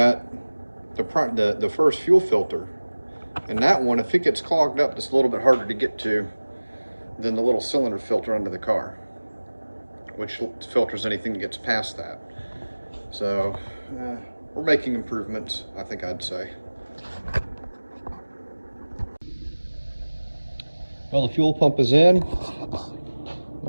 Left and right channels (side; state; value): both; inverted; correlation -1.00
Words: the first fuel filter. And that one, if it gets clogged up, it's a little bit harder to get to than the little cylinder filter under the car, which filters anything that gets past that. So we're making improvements, I think I'd say. Well, the fuel pump is in.